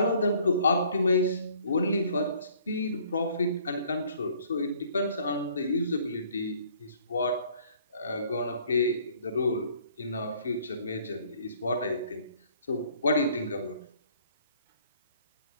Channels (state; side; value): inverted; both; correlation -0.59